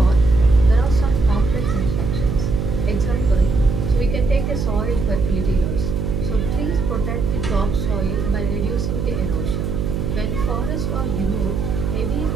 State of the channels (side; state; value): right; noise; hum, 1 dB below the sound